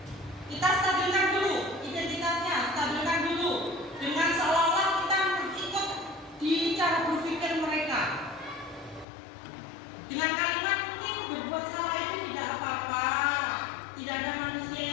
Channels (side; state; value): right; drops out; at 9.1 s